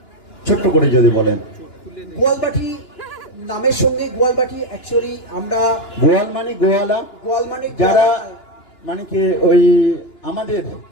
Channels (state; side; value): late; right; 2.9 ms